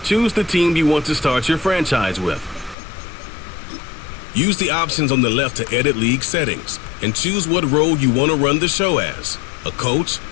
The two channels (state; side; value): drops out; right; at 2.8 s